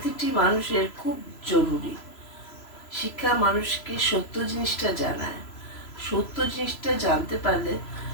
মানুষের খুব জরুরি। শিক্ষা মানুষকে সত্য জিনিসটা জানায়। সত্য জিনিসটা জানতে পারলে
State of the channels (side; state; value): right; late; 3.0 ms